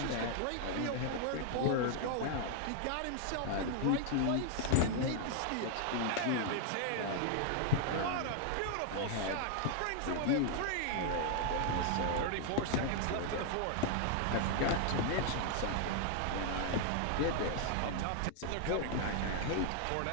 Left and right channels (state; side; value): different; both; correlation 0.00